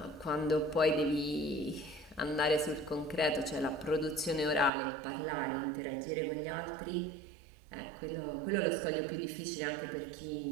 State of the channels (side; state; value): left; drops out; at 4.7 s